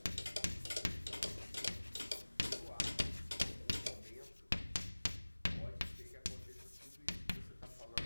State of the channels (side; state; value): both; inverted; correlation -1.00